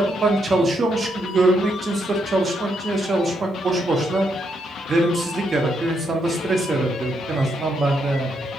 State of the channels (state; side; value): normal; both; correlation 0.77